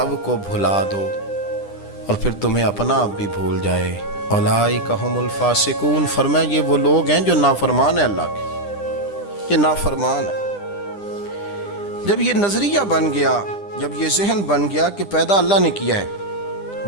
کو بھلا دو اور پھر تمہیں اپنا آپ بھی بھول جائے۔ اولئک ھم الفاسقون، فرمایا یہ وہ لوگ ہیں جو نافرمان ہیں اللہ کے، یہ نافرمان ہے۔ جب یہ نظریہ بن گیا، جب یہ ذہن بن گیا کہ پیدا اللہ نے کیا ہے،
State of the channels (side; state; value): right; late; 10 ms